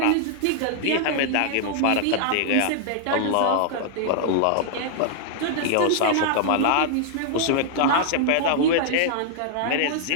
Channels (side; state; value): both; different; correlation -0.01